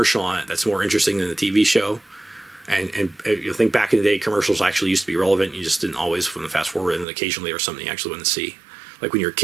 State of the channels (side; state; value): left; drops out; at 7.1 s